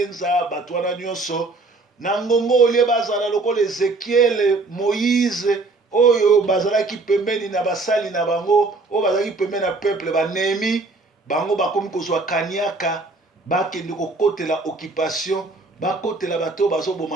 bato wana nyonso na ngongo olie bazala lokola Ezekiel Moïse oyo bazalaki pembeni na basali na bango oyo bazalaki pembeni na peuple banemi bango bakomi kozwa kaniaka bakende kokotela occupation bakotela bato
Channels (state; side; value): quieter; left; 3.5 dB